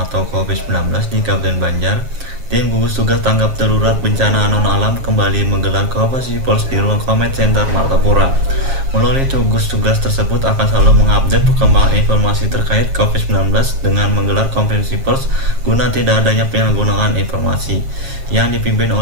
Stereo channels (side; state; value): left; late; 7.4 ms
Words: atau COVID-19 di Kabupaten Banjar. Tim gugus tugas tanggap darurat bencana non-alam kembali menggelar konferensi pers di ruang Comment Center Martapura. Melalui gugus tugas tersebut akan selalu mengupdate perkembangan informasi terkait COVID-19 dengan menggelar konferensi pers guna tidak adanya penyalahgunaan informasi yang dipimpin